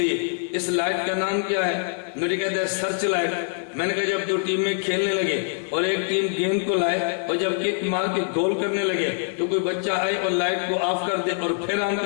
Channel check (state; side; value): silent; right; digital silence